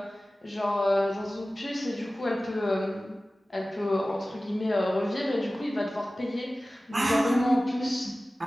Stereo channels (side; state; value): both; normal; correlation 0.97